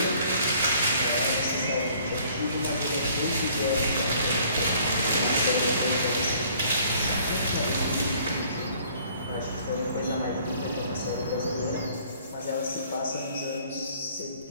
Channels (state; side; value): inverted; both; correlation -0.57